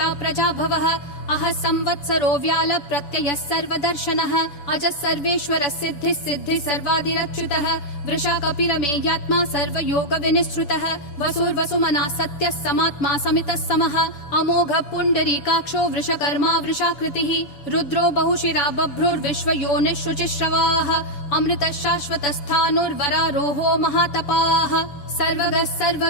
प्रजाभवः अह संवत्सरो व्याल प्रत्ययः सर्वदर्शनः अजः सर्वेश्वरः सिद्धिः सिद्धिः सर्वादिरच्युतः वृषा कपिरमेयात्मा सर्वयोग विनिश्रुतः वसुर्वसुमना सत्यः समात्मा समितः समः अमोघः पुण्डरीकाक्षो वृषकर्मा वृषाकृतिः रुद्रो बहुशिरा बभ्रुर्विश्वयोनिः शुचिश्रवाः अमृतः शाश्वतस्थाणुर्वरारोहो महातपाः सर्वगः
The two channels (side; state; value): right; late; 7.0 ms